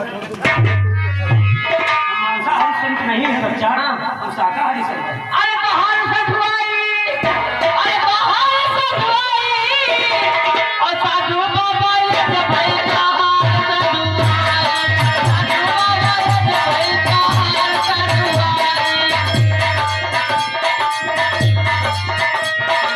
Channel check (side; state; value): both; identical; correlation 1.00